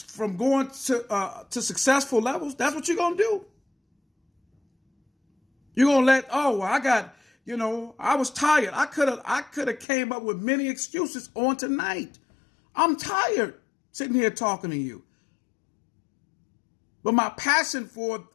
successful levels. That's what you're going to do. You're going to let, I was tired. I could have came up with many excuses on tonight. I'm tired sitting here talking to you. But my passion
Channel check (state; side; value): drops out; right; at 9.9 s